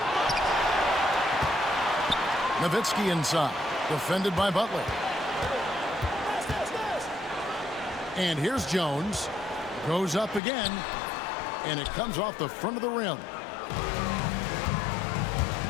Nowitzki inside. Defended by Butler. And here's Jones. Goes up again. And it comes off the front of the rim.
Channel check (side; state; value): right; drops out; at 10.4 s